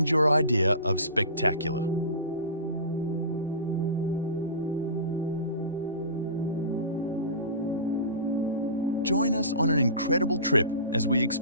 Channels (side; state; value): both; inverted; correlation -0.33